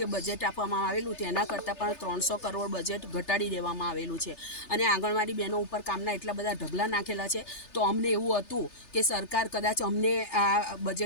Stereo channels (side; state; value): right; late; 3.3 ms